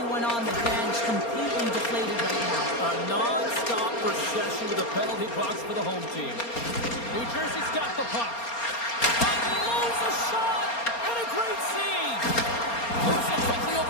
on the bench, completely deflated right now. A non-stop procession to the penalty box for the home team. New Jersey's got the puck. Unloads a shot, and a great save. Moves it quickly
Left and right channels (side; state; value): right; late; 4.3 ms